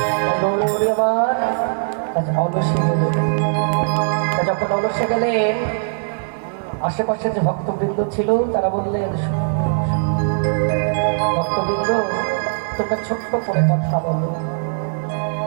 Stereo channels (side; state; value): left; silent; 59 dB below the other